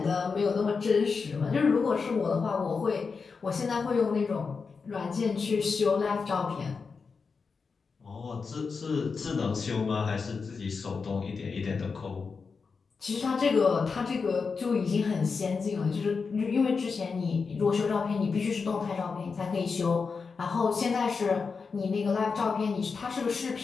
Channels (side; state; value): right; quieter; 5.0 dB